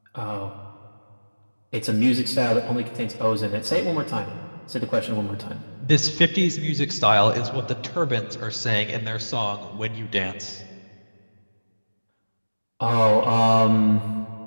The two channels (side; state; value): both; inverted; correlation -1.00